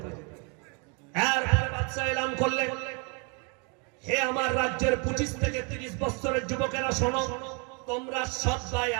এরপরে বাদশা এলান করলেন, হে আমার রাজ্যের 25 থেকে 30 বছরের যুবকেরা, শোনো, তোমরা সবাই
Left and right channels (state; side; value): quieter; left; 33.9 dB